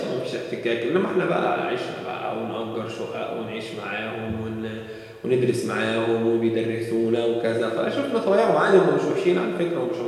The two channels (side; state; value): both; identical; correlation 1.00